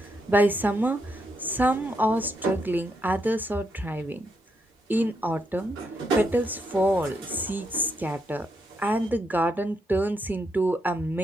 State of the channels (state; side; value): normal; both; correlation 0.79